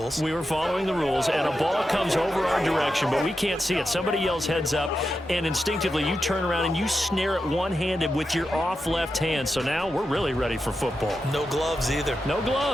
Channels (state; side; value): normal; both; correlation 0.89